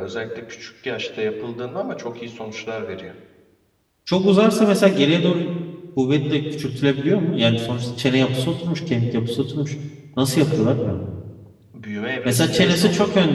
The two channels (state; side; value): identical; both; correlation 1.00